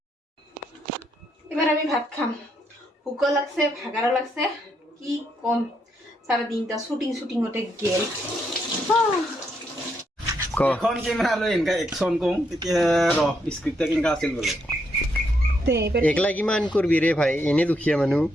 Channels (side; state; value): both; normal; correlation 0.77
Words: এবার আমি ভাত খাম ভুকও লাগছে ভাগারও লাগছে কি কম সারা দিনটা শুটিং শুটিং হতে গেল এখন ক্যামেরা লৈ এনেকা একশন কম তেতিয়া ৰ স্ক্ৰিপ্টটা কেনেকা আছিল বোলে তে এবার একলা কিমান করবি রে ভাই এনে দুখিয়া মানুষ